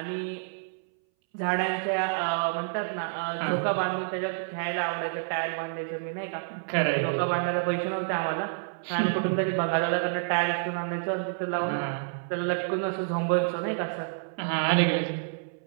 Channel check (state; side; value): silent; left; 59 dB below the other